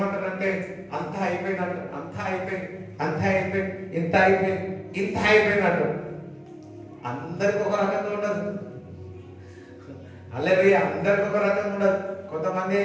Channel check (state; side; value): identical; both; correlation 1.00